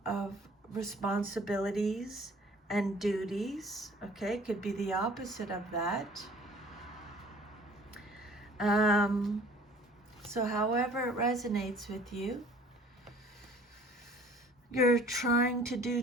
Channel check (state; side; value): normal; both; correlation 0.51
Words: of responsibilities and duties. Okay, it could be the opposite of that. So however it resonates with you, you're trying to do